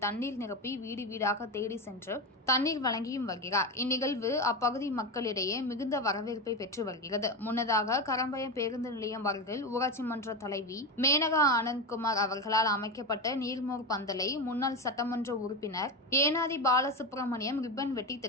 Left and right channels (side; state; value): both; normal; correlation 0.17